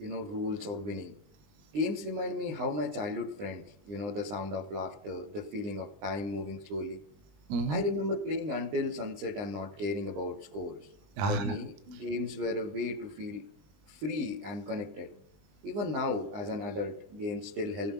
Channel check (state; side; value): late; left; 20 ms